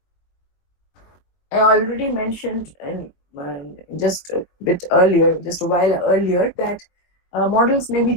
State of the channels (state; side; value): late; right; 22 ms